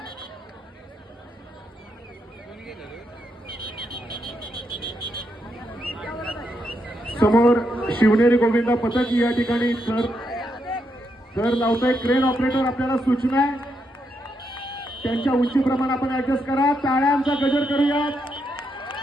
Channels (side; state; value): both; normal; correlation 0.81